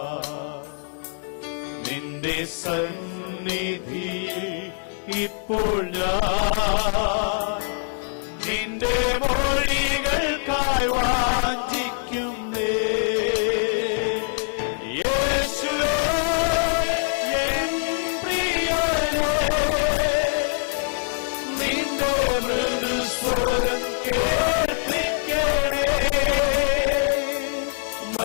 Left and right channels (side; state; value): right; silent; 63 dB below the other